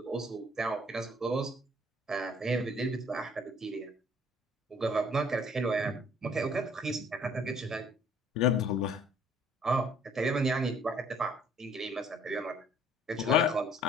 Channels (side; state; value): both; normal; correlation 0.58